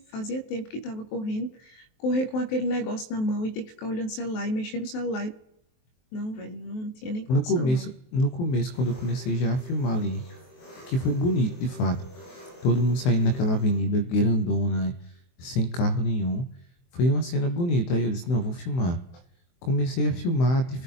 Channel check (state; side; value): late; right; 23 ms